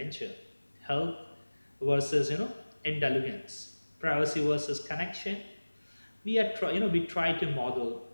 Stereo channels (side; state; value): both; inverted; correlation -1.00